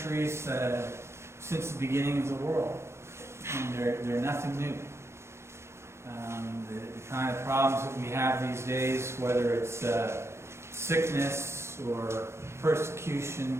since the beginning of the world. And they're nothing new. The kind of problems that we have these days, whether it's sickness or persecution,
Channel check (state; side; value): late; left; 0.13 ms